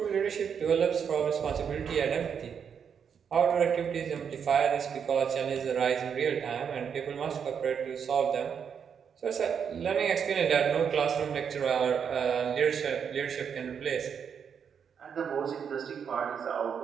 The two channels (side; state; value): left; quieter; 7.2 dB